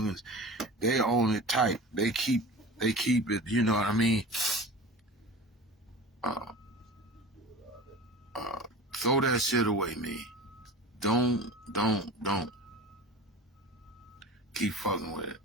they own it tight. They keep it, you know what I mean? Throw that shit away, man. Don't keep fucking with it.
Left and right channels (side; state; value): both; normal; correlation 0.36